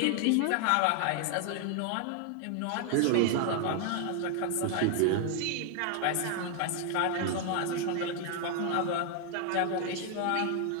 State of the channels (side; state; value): both; different; correlation 0.00